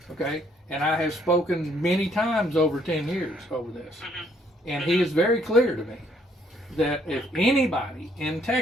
okay, and I have spoken many times over 10 years over this. And he is very clear to me that if anybody in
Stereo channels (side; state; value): both; normal; correlation 0.67